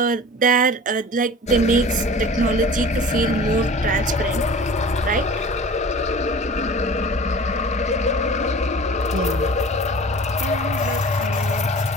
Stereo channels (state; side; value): normal; both; correlation 0.41